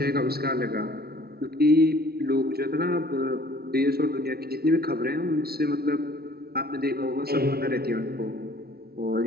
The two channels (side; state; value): left; late; 0.45 ms